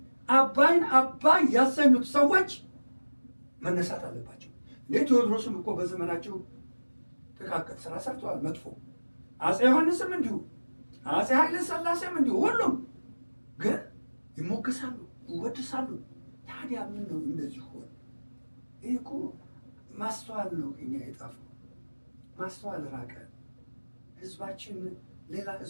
አባይን አባይ ያሰኙት ሰዎች መነሳት አለባቸው። እንዴ ቴዎድሮስም እኮ በዘመናቸው ጥቃቅን ስራ ሰርተዋል፣ መጥፎ። አፄ ዮሐንስም እንዲሁ፣ አፄ ኃይለ ሥላሴም እንዲሁ። ሁሉም ግን ይሞገሳሉ፣ ይወድሳሉ። ታዲያ ምን ነው እንደዚህ ሆነ? ይህ እኮ ማስተዋል ነው እኛ የጣፈው። ማስተዋል ራቀ። ህዝባችን ሌላ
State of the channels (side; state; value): both; inverted; correlation -1.00